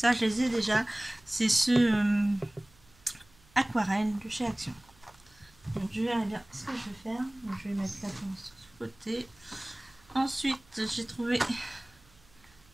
je les ai déjà, c'est ce aquarelle de chez Action. Donc je vais bien ce que je vais faire. Donc, je vais mettre la pince sur ce côté. Ensuite j'ai trouvé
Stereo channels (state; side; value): noise; right; hum, 29 dB below the sound